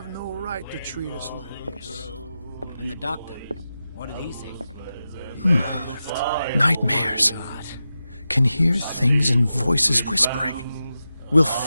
no right to treat us like this. And the doctor, what did he say? Nightmares. Can hear things and voices whispering. Will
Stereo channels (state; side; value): inverted; both; correlation -0.91